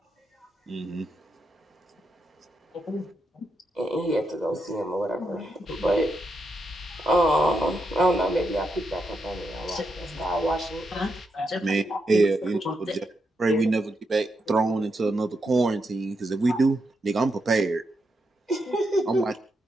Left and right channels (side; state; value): both; normal; correlation 0.83